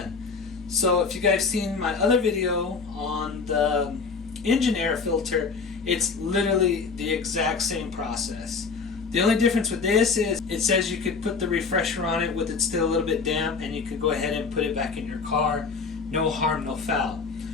So if you guys seen my other video on the engine air filter, it's literally the exact same process. The only difference with this is it says you could put the refresher on it with it still a little bit damp, and you could go ahead and put it back in your car. No harm, no foul.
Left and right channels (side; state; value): right; quieter; 4.9 dB